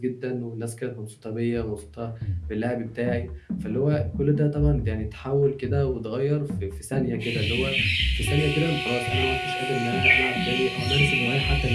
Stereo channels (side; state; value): both; identical; correlation 1.00